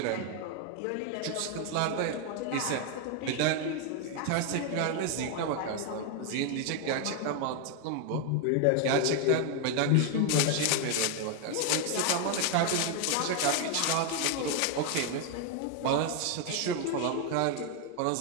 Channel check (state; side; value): different; both; correlation 0.00